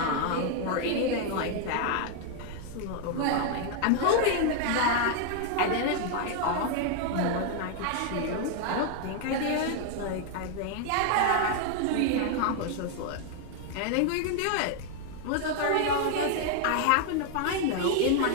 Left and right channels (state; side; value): different; both; correlation 0.00